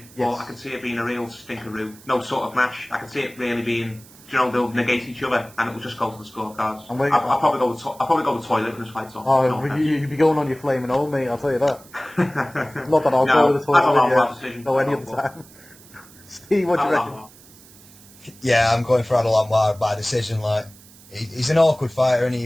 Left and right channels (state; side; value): noise; right; hiss, 23 dB below the sound